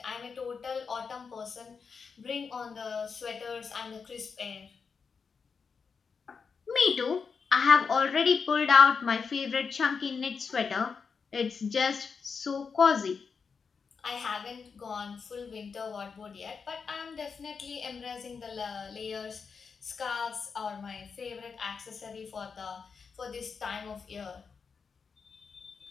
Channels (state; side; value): quieter; right; 5.6 dB